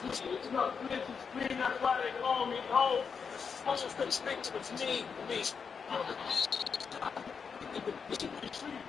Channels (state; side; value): quieter; right; 6.0 dB